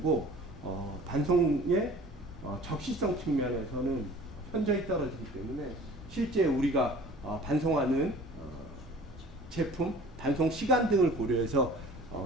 반송의 적시성 측면에서는 현저히 떨어지기 때문에 실제 우리가 반송하는 제품, 반송 시간 등을 고려해서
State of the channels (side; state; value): both; normal; correlation 0.46